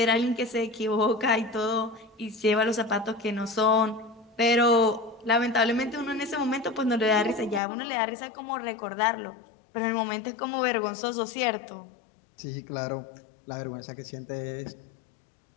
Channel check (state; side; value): drops out; right; at 7.6 s